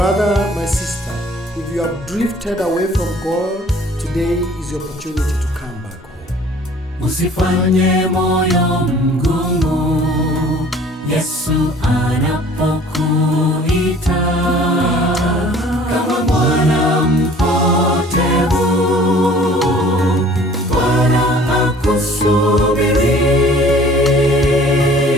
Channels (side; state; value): both; normal; correlation 0.51